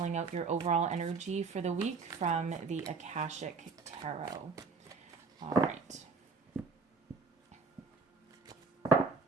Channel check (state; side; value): quieter; left; 4.4 dB